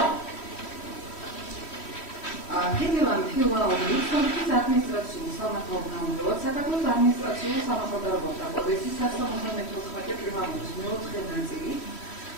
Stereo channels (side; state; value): right; late; 3.1 ms